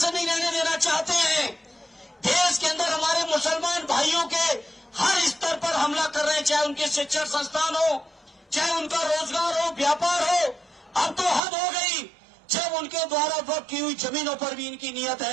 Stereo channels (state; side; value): drops out; left; at 11.4 s